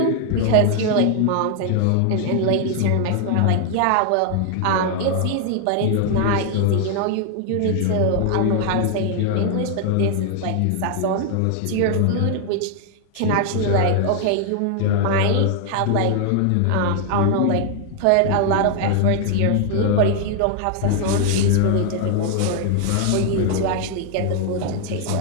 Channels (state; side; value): different; both; correlation 0.00